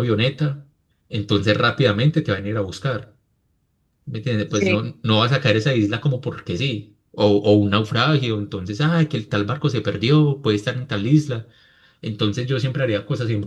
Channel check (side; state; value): both; identical; correlation 1.00